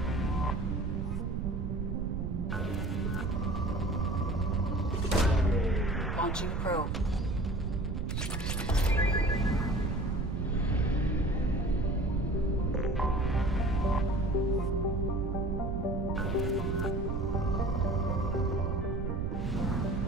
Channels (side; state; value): right; noise; rumble, 2 dB below the sound